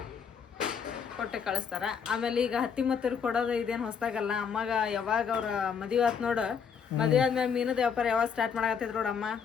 ಕೊಟ್ಟೆ ಕಳಿಸ್ತಾರೆ. ಆಮೇಲೆ ಈಗ ಹತ್ತಿ ಮತ್ತರು ಕೊಡೋದು ಇದೇನು ಹೊಸ್ದಾಗಲ್ಲ. ಅಮ್ಮಗೆ ಯಾವಾಗ ಅವ್ರ ಮದುವೆ ಆಯ್ತು ನೋಡು, ಮದುವೆ ಆದ್ಮೇಲೆ ಮೀನದ ವ್ಯಾಪಾರ ಯಾವಾಗ ಸ್ಟಾರ್ಟ್ ಮಾಡಕತ್ತಿದ್ರು ನೋಡಮ್ಮ,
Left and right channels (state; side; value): quieter; right; 6.8 dB